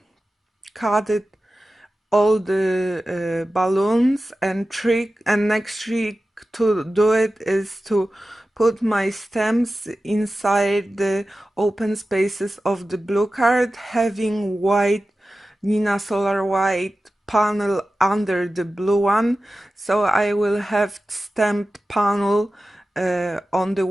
cut it all the balloons, and next trick to do it is to put my stamps inside the open spaces of the blue card, having white Nina Solar white panel under the blue one, so I will have stamped panel on the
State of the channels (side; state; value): both; normal; correlation 0.94